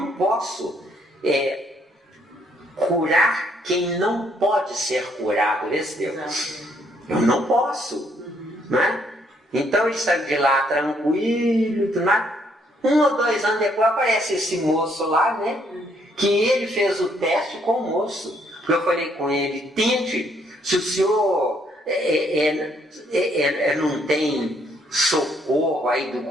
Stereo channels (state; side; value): normal; both; correlation 0.69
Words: posso curar quem não pode ser curado. Eu não posso. Né? Então ele saiu de lá tranquilo, tudo mais. 1 ou 2 anos depois aparece esse moço lá, né? Que ele fez o teste com o moço. Eu falei com ele, tente, se o senhor não tem socorro aí do